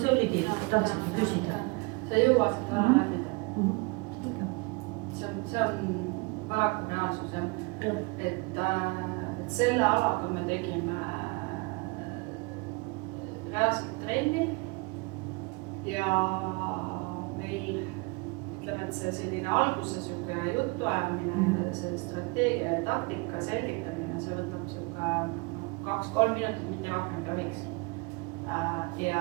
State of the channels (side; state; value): left; quieter; 28.0 dB